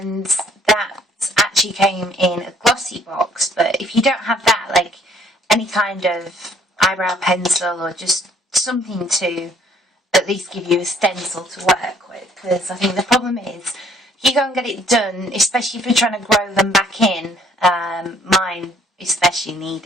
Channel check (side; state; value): both; normal; correlation 0.62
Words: that actually came in a glossy box, but if you don't have that, like any kind of eyebrow pencil or just something to at least give you a stencil to work with, because I think the problem is if you go and get it done, especially if you're trying to grow them back in, mine especially